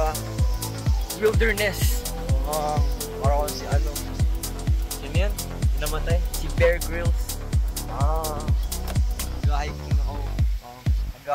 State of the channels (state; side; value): identical; both; correlation 1.00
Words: wilderness. Parang si ano. Sino yan? Namatay? Si Bear Grylls. Nag-hiking ako.